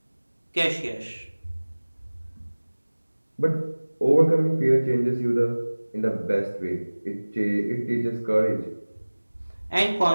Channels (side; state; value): both; inverted; correlation -1.00